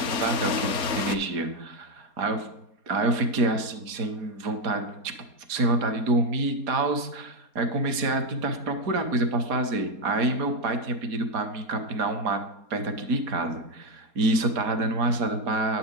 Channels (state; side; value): late; left; 4.2 ms